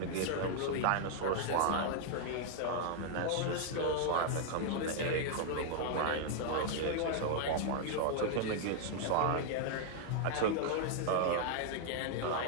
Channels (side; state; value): both; different; correlation -0.01